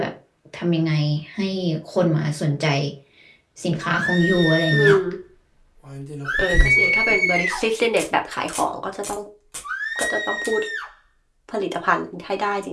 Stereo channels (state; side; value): identical; both; correlation 1.00